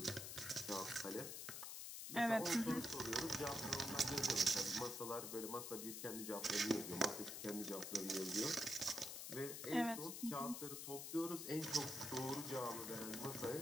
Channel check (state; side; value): noise; left; hiss, 6 dB below the sound